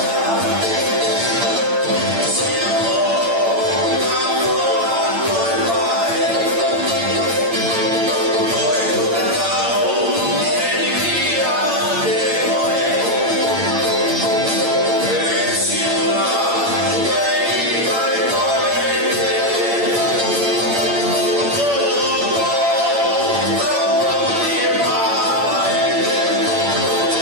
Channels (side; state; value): left; late; 8.8 ms